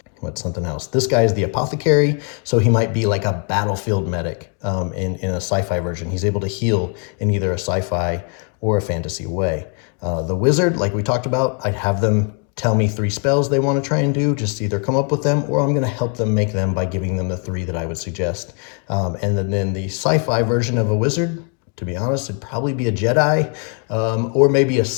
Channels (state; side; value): quieter; right; 39.8 dB